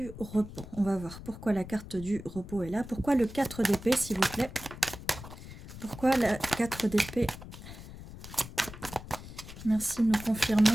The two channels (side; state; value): left; noise; rumble, 13 dB below the sound